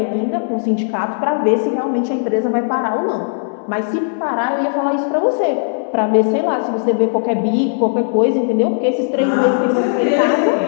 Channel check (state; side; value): silent; right; digital silence